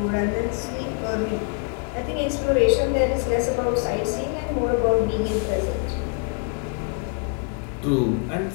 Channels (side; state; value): right; quieter; 38.6 dB